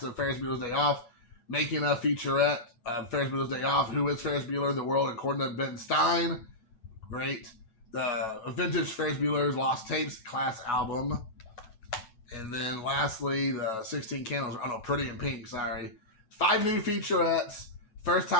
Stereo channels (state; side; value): late; right; 9.1 ms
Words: of Ferris Bueller's Day Off, making a featurette of Ferris Bueller's Day Off, Who is Ferris Bueller, The World According to Ben Stein. Great. The vintage Ferris Bueller's Lost Tapes class album. And then lastly, the 16 Candles, Pretty in Pink, sorry. 5 new featurettes. First